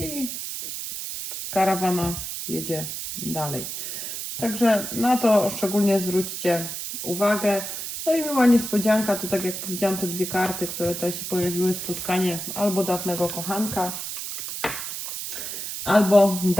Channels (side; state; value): right; noise; hiss, 6 dB below the sound